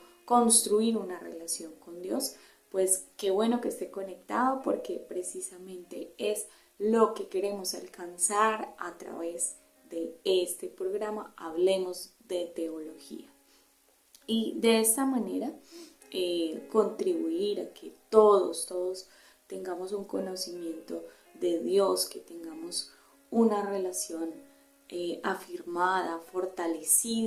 construir una relación con Dios. Pues qué bueno que esté conectado, porque precisamente es lo que queremos alcanzar a través de este programa Hablemos de Teología. Y de esta manera contribuir a que todos tengamos un conocimiento de Dios, que tengamos una relación afirmada,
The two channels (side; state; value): both; identical; correlation 1.00